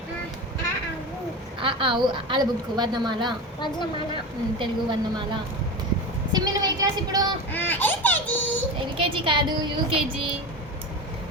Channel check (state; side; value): normal; both; correlation 0.25